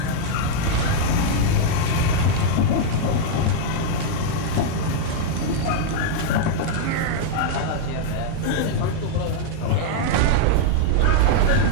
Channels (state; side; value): different; both; correlation -0.01